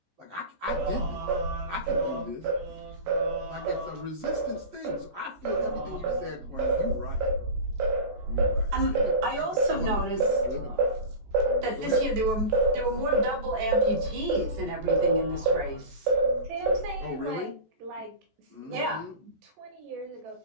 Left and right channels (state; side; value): late; left; 14 ms